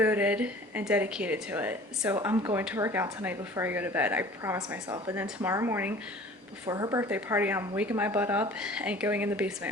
and dedicated to it. So I'm going to work out tonight before I go to bed. I promise myself. And then tomorrow morning before her birthday party, I'm waking my butt up and going in the basement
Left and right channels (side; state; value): both; normal; correlation 0.46